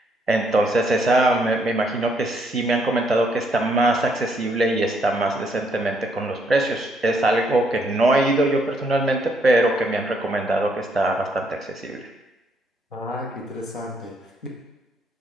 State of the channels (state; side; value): normal; both; correlation 0.72